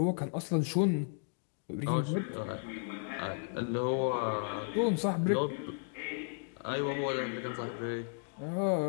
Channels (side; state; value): right; silent; digital silence